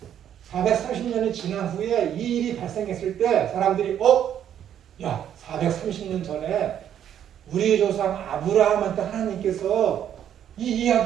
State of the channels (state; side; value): quieter; left; 9.9 dB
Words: 430년이 지난 후에 이 일이 발생했을 때 사람들이 야 430년 전에 우리 조상 아브라함한테 하나님께서 이